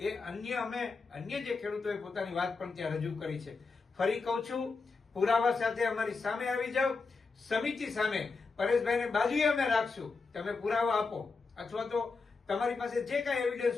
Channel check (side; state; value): right; quieter; 4.4 dB